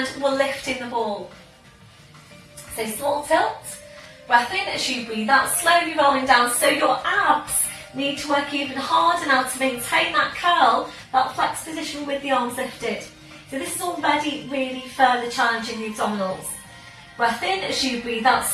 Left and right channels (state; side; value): identical; both; correlation 1.00